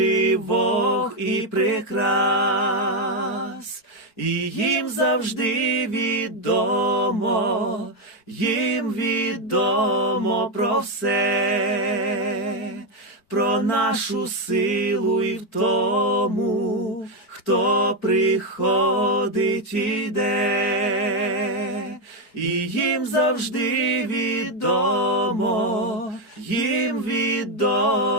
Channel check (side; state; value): right; late; 4.5 ms